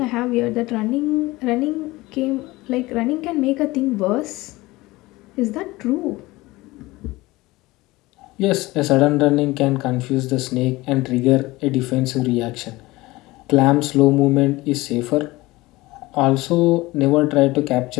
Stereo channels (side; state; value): right; quieter; 20.2 dB